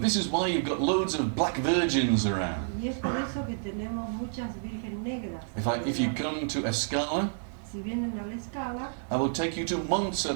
this is why you've got loads of black virgins around. Y es por eso que tenemos muchas virgen negras. If you come to Escala, Si vienen a la escala, I will take you to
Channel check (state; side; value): silent; left; 58 dB below the other